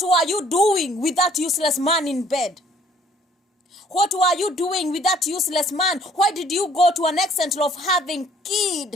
were you doing with that useless man in bed? What were you doing with that useless man? Why did you go to an extent of having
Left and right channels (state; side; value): normal; both; correlation 0.59